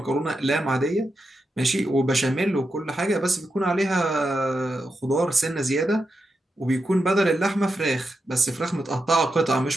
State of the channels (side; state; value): both; normal; correlation 0.87